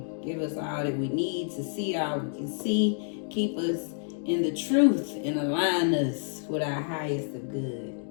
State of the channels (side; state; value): right; silent; digital silence